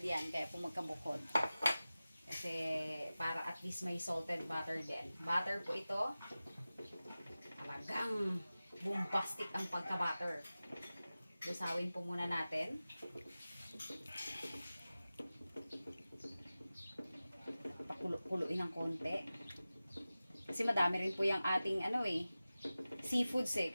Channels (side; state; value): both; inverted; correlation -0.96